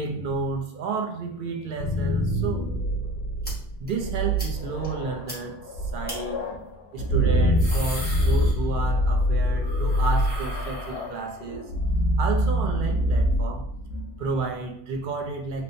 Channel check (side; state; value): both; normal; correlation 0.50